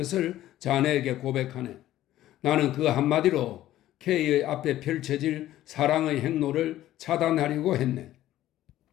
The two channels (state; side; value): quieter; right; 13.9 dB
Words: 자네에게 고백하네. 나는 그 한마디로 K의 앞에 펼쳐질 사랑의 행로를 차단하려고 했네.